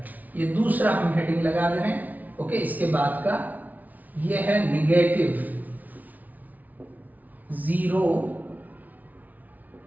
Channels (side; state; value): left; late; 0.076 ms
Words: ये दूसरा हम हेडिंग लगा दे रहे हैं, ओके। इसके बाद का ये है नेगेटिव जीरो